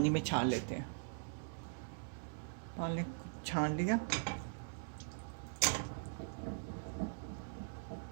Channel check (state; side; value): silent; left; digital silence